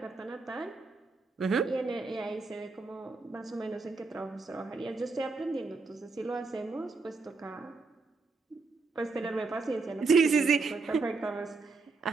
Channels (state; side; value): quieter; left; 4.0 dB